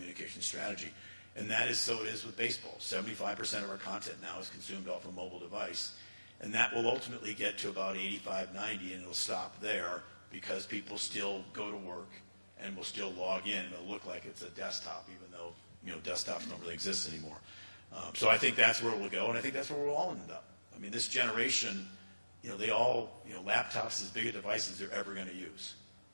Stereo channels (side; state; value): both; inverted; correlation -1.00